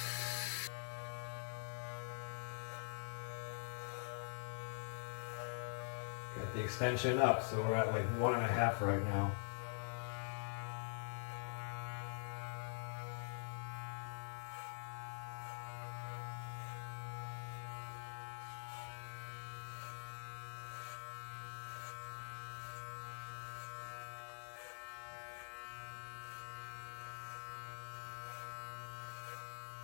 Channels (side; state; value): right; silent; digital silence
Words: Got the extension up, so we're at like 1.5 right now.